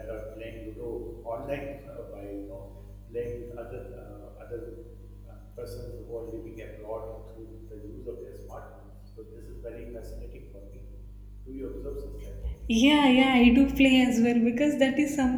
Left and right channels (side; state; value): both; identical; correlation 1.00